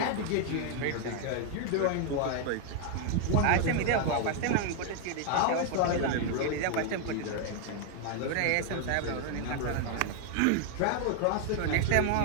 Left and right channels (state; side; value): different; both; correlation 0.00